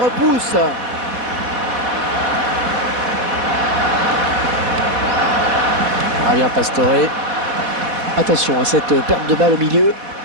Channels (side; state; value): left; late; 4.1 ms